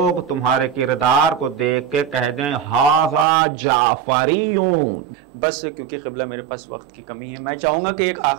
تمہارے کردار کو دیکھ کے کہہ دیں ھذا جعفریون۔ بس کیونکہ قبلہ میرے پاس وقت کی کمی ہے، میں چاہوں گا کہ ایک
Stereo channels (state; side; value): drops out; left; at 3.2 s